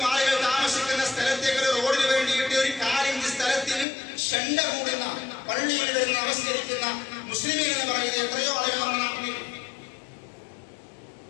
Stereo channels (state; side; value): drops out; right; at 3.9 s